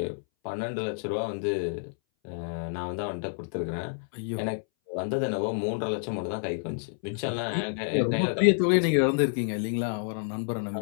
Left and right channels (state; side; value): silent; right; 59 dB below the other